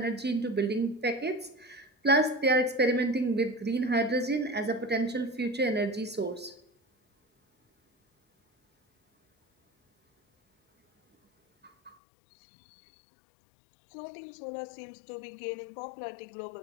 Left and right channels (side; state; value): right; drops out; at 12.0 s